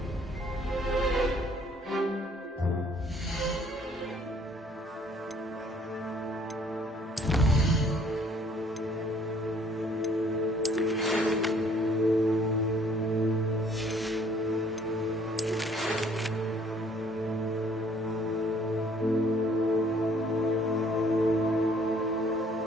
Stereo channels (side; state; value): both; normal; correlation 0.60